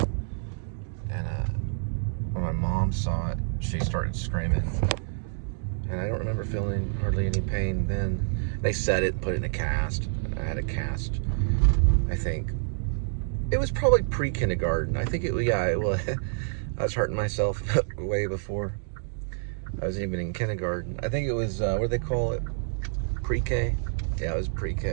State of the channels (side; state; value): left; silent; digital silence